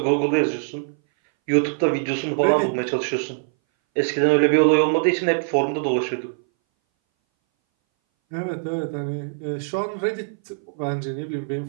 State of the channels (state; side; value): silent; left; 60 dB below the other